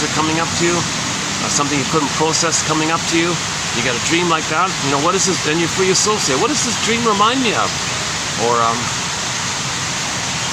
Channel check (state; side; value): identical; both; correlation 1.00